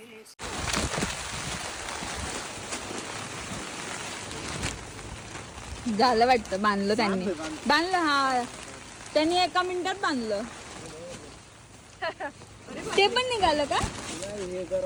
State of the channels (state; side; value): identical; both; correlation 1.00